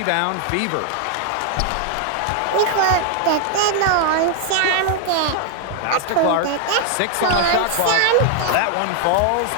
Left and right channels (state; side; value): different; both; correlation 0.00